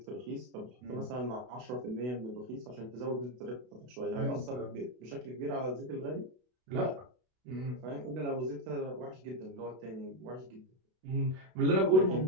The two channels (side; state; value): left; late; 32 ms